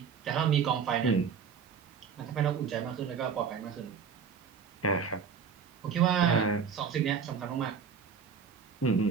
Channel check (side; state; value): left; quieter; 6.5 dB